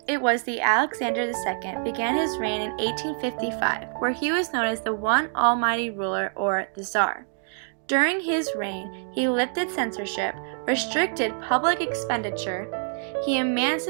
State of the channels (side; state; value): left; silent; 61 dB below the other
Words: it was the Alexander II began his reign in 1855, where he was known as the one almighty ruler, or the Tsar. During his reign, he lifted censorship, restricted public expenditure, he